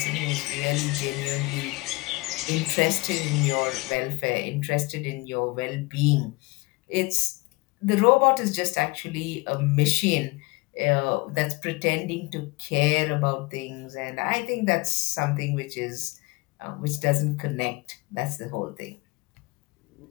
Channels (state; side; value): quieter; right; 23.9 dB